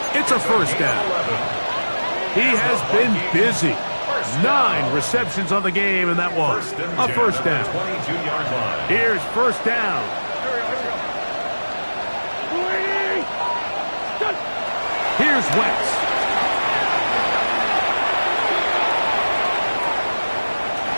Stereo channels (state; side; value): inverted; both; correlation -1.00